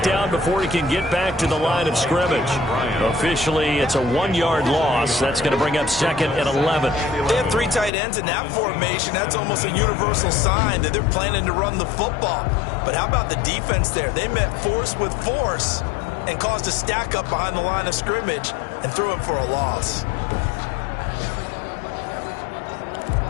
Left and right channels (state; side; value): drops out; right; at 7.9 s